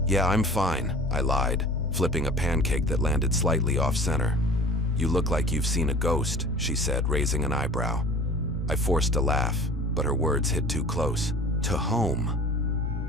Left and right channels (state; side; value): normal; both; correlation 0.43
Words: "Yeah, I'm fine," I lied, flipping a pancake that landed slightly off-center. "You look like you've seen a ghost," she said, raising an eyebrow. I forced a laugh, but her words hit too close to home.